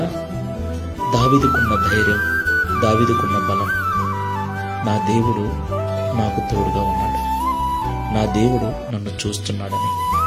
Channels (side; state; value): both; identical; correlation 1.00